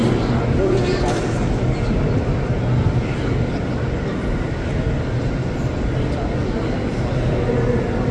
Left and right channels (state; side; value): identical; both; correlation 1.00